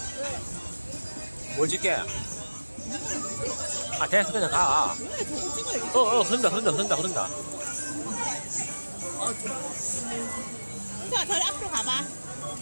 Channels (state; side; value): inverted; both; correlation -1.00